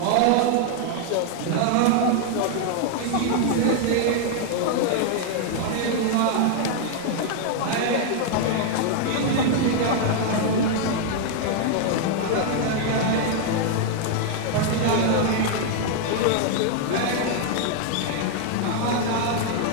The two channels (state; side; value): different; both; correlation 0.00